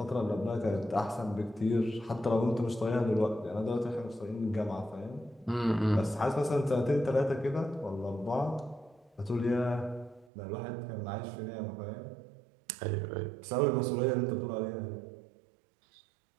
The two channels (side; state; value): left; drops out; at 10.3 s